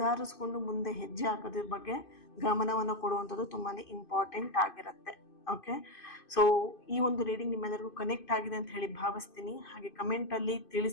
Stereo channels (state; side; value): late; right; 2.5 ms